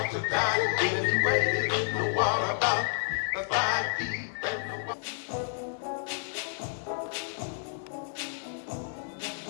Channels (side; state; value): right; silent; digital silence